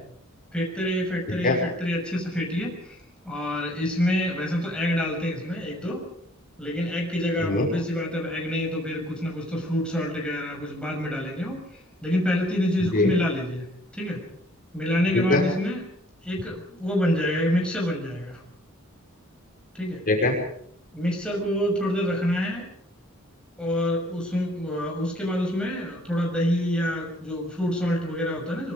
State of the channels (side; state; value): both; normal; correlation 0.58